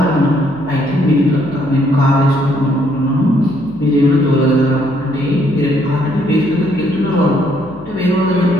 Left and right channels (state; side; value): noise; left; hum, 20 dB below the sound